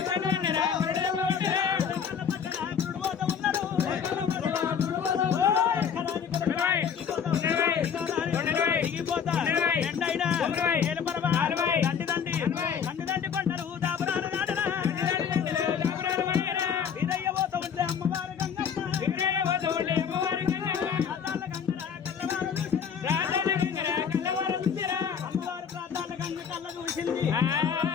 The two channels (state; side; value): quieter; right; 7.3 dB